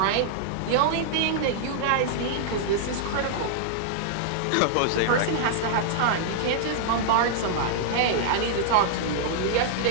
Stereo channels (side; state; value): both; different; correlation -0.01